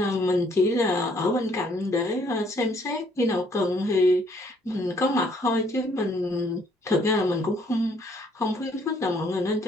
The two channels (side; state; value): both; normal; correlation 0.65